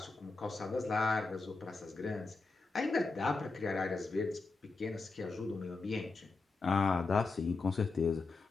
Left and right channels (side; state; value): right; quieter; 3.9 dB